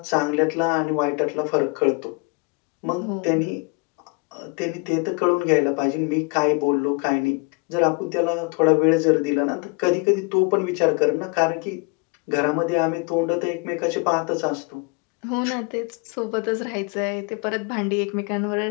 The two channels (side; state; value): right; quieter; 30.8 dB